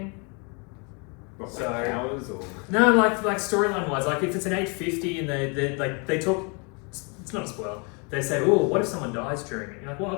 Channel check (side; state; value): right; quieter; 33.6 dB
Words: What, So- powers or... No, like storyline wise, if it's an 850 and they talk, it's not a spoil. They say, oh, what if someone dies during it? You're like, well,